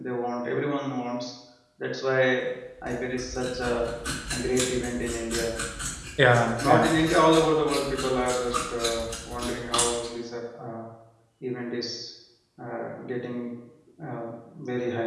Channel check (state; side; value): identical; both; correlation 1.00